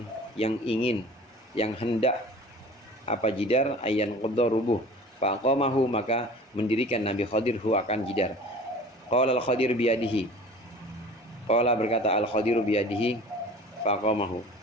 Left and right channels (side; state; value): both; normal; correlation 0.42